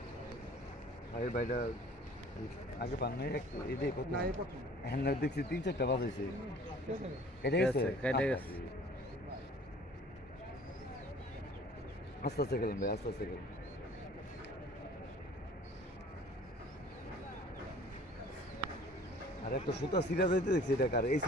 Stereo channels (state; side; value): normal; both; correlation 0.50